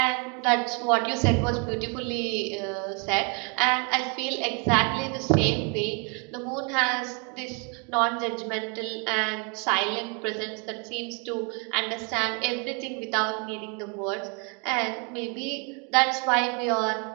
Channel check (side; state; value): left; quieter; 34.5 dB